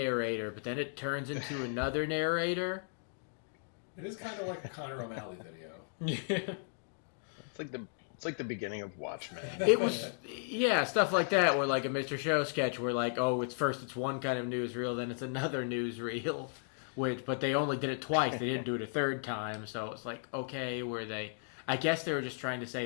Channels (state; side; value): silent; right; digital silence